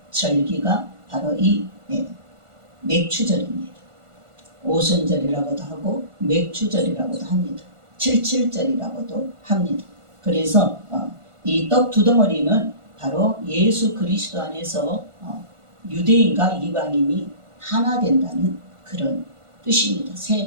절기가 바로 이 맥추절입니다. 오순절이라고도 하고 맥추절이라고도 합니다. 칠칠절이라고도 합니다. 그래서 이 떡 두 덩어리는 바로 예수 그리스도 안에서 유대인과 이방인이 하나 된다는 그런 뜻입니다.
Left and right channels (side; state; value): left; late; 1.5 ms